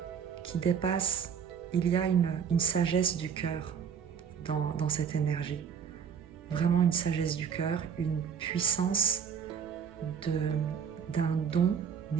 qui dépassent. Il y a une sagesse du cœur dans cette énergie, vraiment une sagesse du cœur, une puissance d'un don,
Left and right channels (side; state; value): left; quieter; 7.3 dB